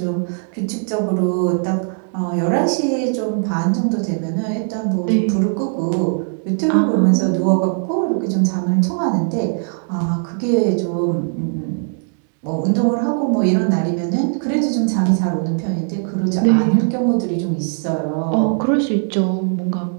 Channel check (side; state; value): left; silent; 57 dB below the other